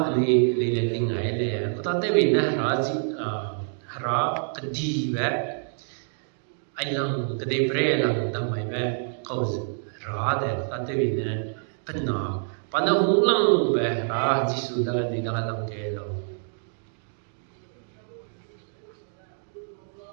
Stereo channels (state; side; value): silent; left; digital silence